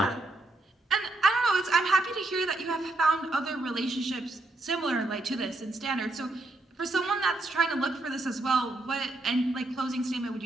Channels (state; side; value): normal; both; correlation 0.79